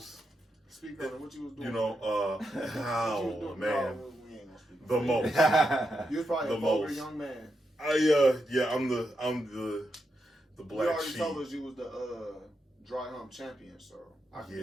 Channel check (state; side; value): normal; both; correlation 0.84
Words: Speak on it. What you was doing? Man. The most. You was probably The a vulgar most. young man. I'm the black You already sheep. told us you was the dry hump champion, so I can